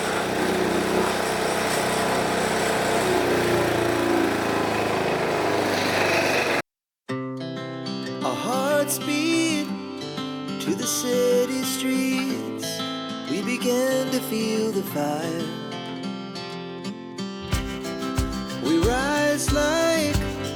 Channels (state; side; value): identical; both; correlation 1.00